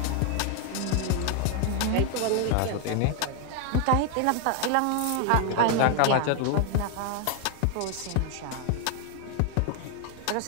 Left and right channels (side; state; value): both; different; correlation 0.01